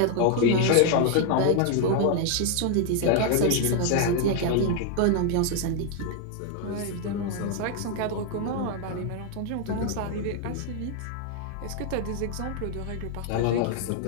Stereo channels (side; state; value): both; different; correlation 0.00